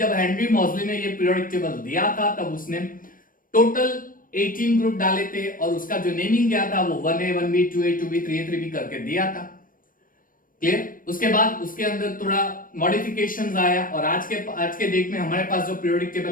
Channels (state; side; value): late; right; 0.40 ms